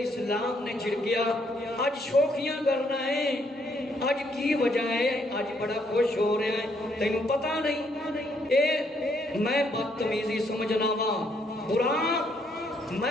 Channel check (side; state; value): both; normal; correlation 0.71